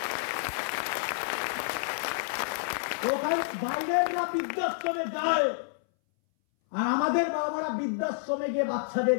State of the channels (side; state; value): right; silent; 58 dB below the other